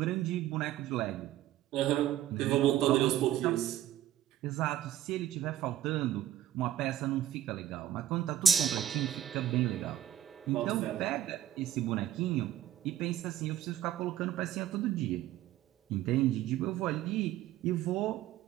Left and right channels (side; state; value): left; quieter; 12.0 dB